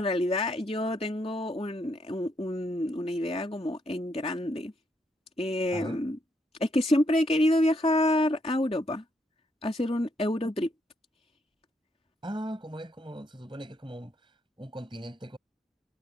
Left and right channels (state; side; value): normal; both; correlation 0.75